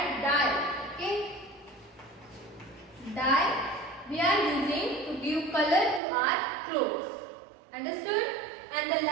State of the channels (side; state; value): left; drops out; at 6.0 s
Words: dye. Okay, color to our clothes. Understood? And the